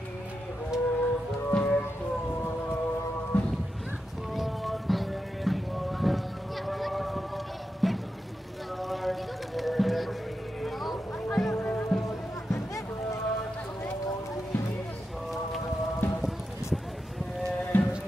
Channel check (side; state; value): both; normal; correlation 0.88